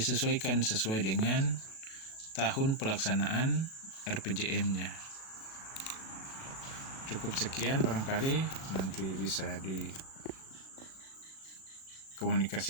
sesuai dengan tahun pelaksanaan RPJM-nya. Cukup sekian, barangkali nanti bisa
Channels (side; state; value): right; late; 37 ms